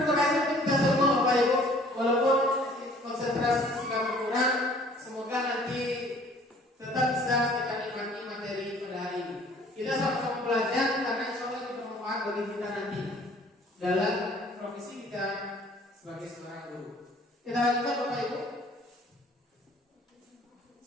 kasih untuk kita semua Bapak Ibu. Walaupun konsentrasi sudah berkurang, semoga nanti tetap bisa kita nikmati materi pada hari ini. Kita sama-sama belajar karena insya Allah itu bermanfaat bagi kita nanti dalam profesi kita sebagai seorang guru. Kita lanjutkan Bapak Ibu.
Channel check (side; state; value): both; normal; correlation 0.55